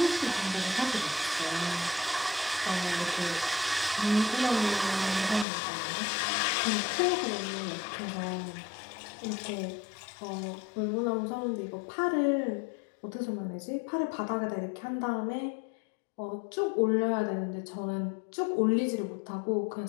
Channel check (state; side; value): drops out; right; at 5.5 s